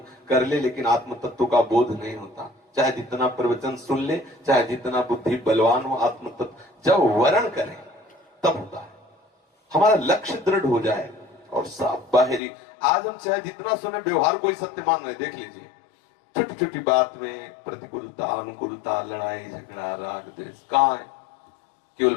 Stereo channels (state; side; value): drops out; right; at 12.4 s